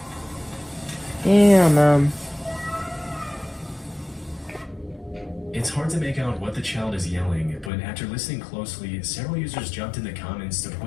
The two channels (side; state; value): right; drops out; at 7.7 s